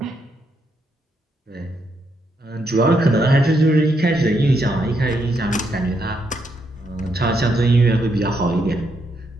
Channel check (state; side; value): normal; both; correlation 0.78